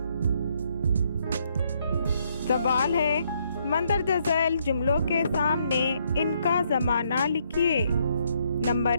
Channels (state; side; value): inverted; both; correlation -0.72